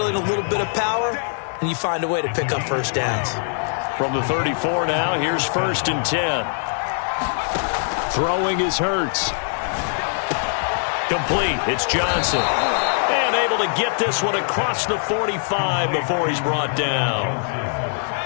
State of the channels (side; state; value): right; silent; digital silence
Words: a little bit of power, and you find a way to pick up first downs. From the 34 now, here's 1st and 10. Throwing is Hurts. Complete. It's Johnson. And able to get this one across the 45 before he's brought down.